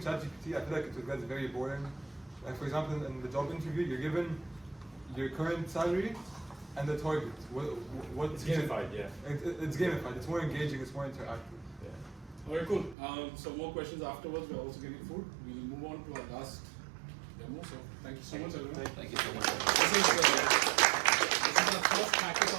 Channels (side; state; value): left; drops out; at 13.0 s